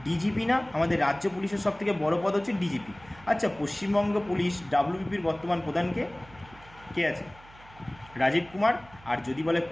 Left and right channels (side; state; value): right; noise; hum, 23 dB below the sound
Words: ডিজিপি না? আমাদের রাজ্য পুলিশের সবথেকে বড় পদ হচ্ছে ডিজিপি। আচ্ছা, পশ্চিমবঙ্গ পুলিশ ডাব্লিউবিপির বর্তমান প্রধানকে কে আছে? রাজীব কুমার। আর যদি বলে